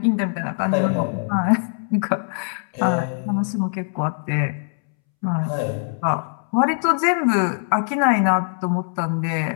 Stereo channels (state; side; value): silent; right; 64 dB below the other